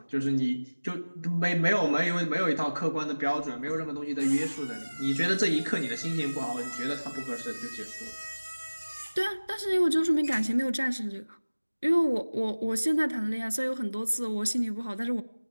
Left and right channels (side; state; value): both; inverted; correlation -1.00